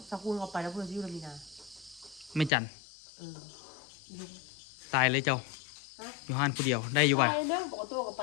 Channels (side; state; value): right; drops out; at 2.5 s